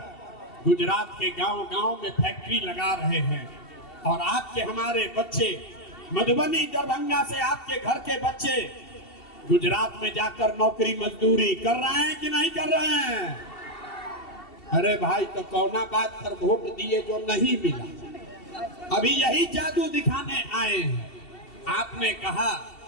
गुजरात के गांव-गांव में फैक्ट्री लगा रहे हैं। और आपके हमारे बच्चे मधुबनी दरभंगा से आपके घर के बच्चे गुजरात में जाकर नौकरी मजदूरी कर रहे हैं कि नहीं कर रहे हैं? अरे भाई तो कौना बात पर वोट दिए जो नहीं मिला? अभी यही जादू दिखाने आए हैं। आपने कहा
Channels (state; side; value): late; right; 2.7 ms